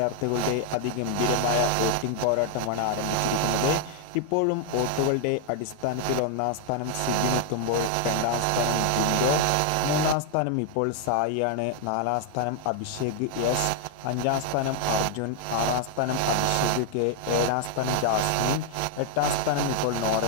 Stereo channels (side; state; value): both; different; correlation 0.00